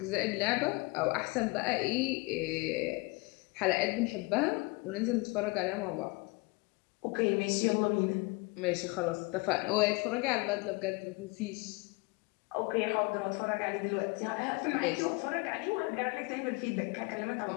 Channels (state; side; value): quieter; right; 26.9 dB